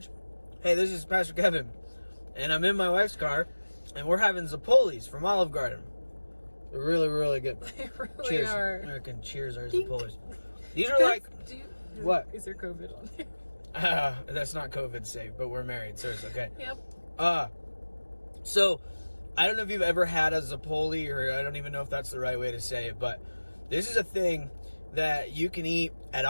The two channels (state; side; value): inverted; both; correlation -1.00